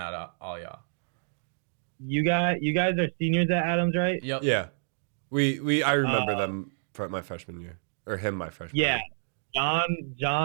of all y'all. You guys are seniors at Adams, right? Yep. Yeah. I remember them from my freshman year. Or him my freshman year. Yeah.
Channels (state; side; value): silent; left; digital silence